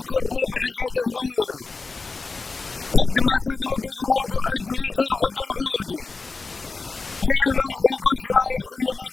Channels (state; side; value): quieter; right; 4.1 dB